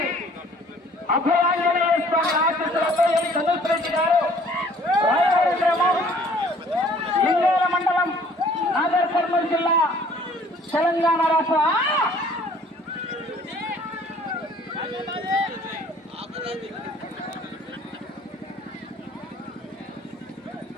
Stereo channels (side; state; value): both; normal; correlation 0.56